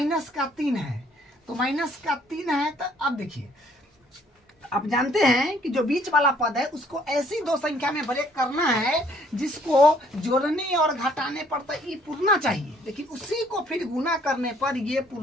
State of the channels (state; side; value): normal; both; correlation 0.62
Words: का 3 है, तो माइनस का 3 है। तो अब देखिए आप जानते हैं कि जो बीच वाला पद है उसको ऐसी दो संख्या में ब्रेक करना है जिसको जोड़ने और घटाने पर तो ये पूर्णा चाहिए, लेकिन उसी को फिर गुना करने पर ये